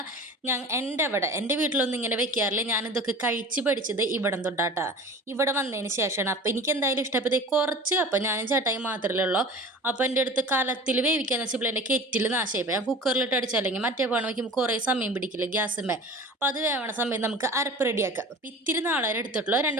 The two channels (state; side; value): normal; both; correlation 0.39